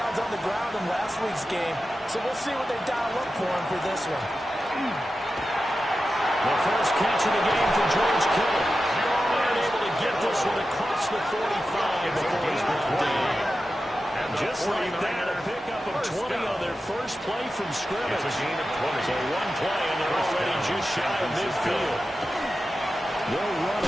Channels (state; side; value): normal; both; correlation 0.92